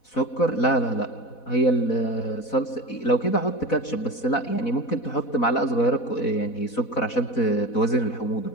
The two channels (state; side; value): late; right; 4.1 ms